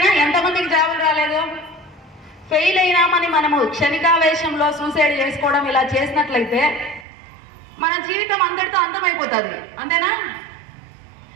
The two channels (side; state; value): left; drops out; at 7.1 s